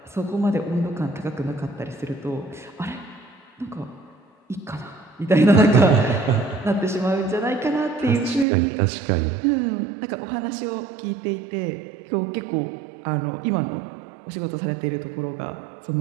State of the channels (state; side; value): drops out; left; at 8.5 s